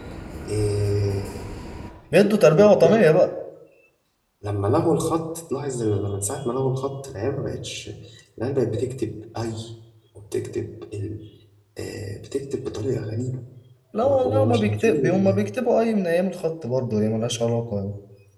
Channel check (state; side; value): identical; both; correlation 1.00